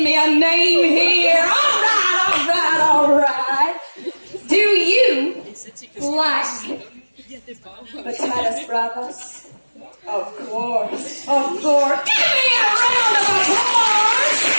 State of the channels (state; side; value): inverted; both; correlation -1.00